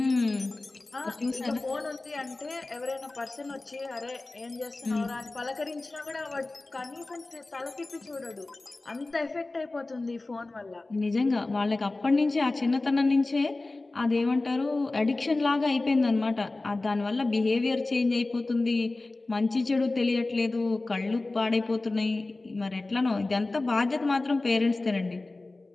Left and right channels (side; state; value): right; quieter; 3.1 dB